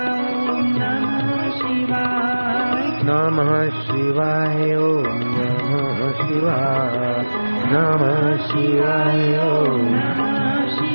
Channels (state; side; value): inverted; both; correlation -1.00